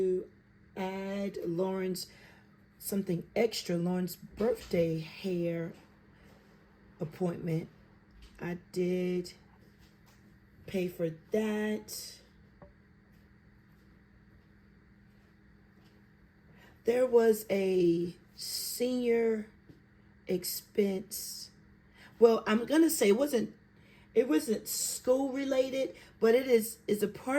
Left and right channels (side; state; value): both; identical; correlation 1.00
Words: add Lauren's something extra, Lauren's birthday hair appointment. I did pay for that. There was a senior expense. Well, I'm gonna say it wasn't school related, but it is a